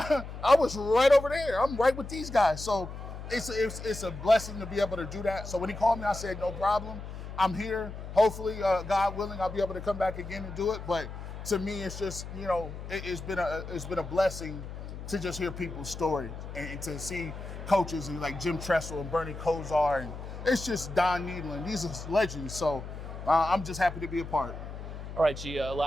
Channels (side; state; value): left; noise; hum, 10 dB below the sound